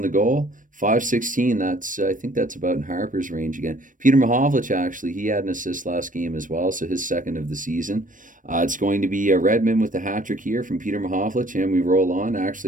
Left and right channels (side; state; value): left; late; 0.38 ms